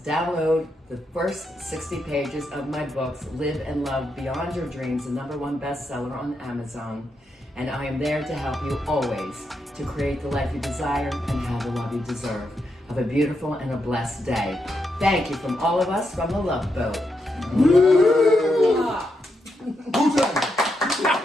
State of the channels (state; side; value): normal; both; correlation 0.83